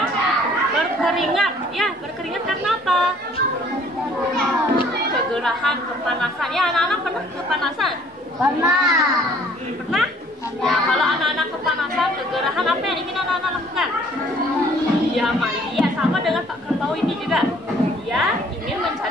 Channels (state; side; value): normal; both; correlation 0.57